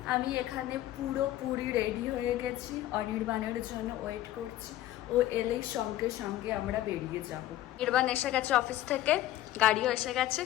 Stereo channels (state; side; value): quieter; right; 14.2 dB